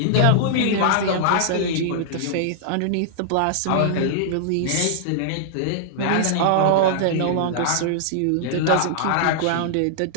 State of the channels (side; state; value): both; different; correlation -0.01